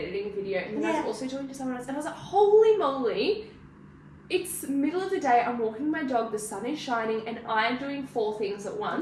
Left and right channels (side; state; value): both; identical; correlation 1.00